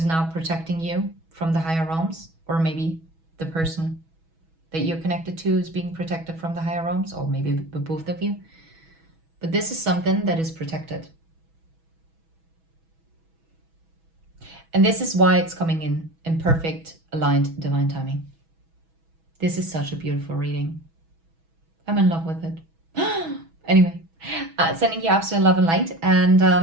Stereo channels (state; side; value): late; left; 6.1 ms